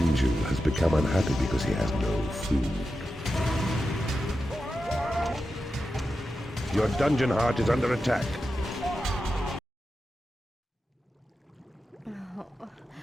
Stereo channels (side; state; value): both; normal; correlation 0.90